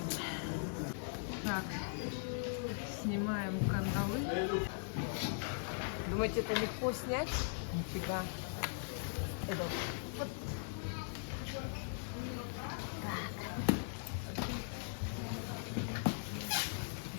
Так, снимаем кандалы. Думаете, это легко снять? Нифига. Это вот.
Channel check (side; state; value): right; silent; digital silence